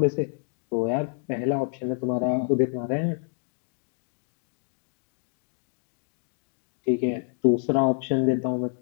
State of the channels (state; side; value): silent; right; digital silence